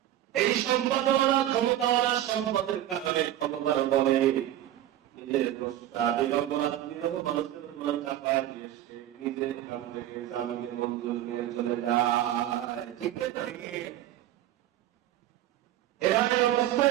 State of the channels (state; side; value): quieter; left; 12.8 dB